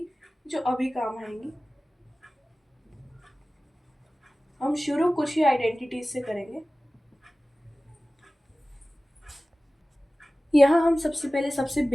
जो अभी काम आएंगी। हम शुरू कुछ ही आइडेंटिटीज से करेंगे। यहाँ हम सबसे पहले सबसे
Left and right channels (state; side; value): normal; both; correlation 0.97